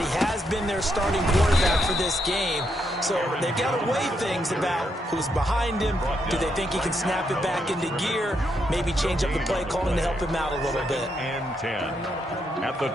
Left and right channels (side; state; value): both; normal; correlation 0.79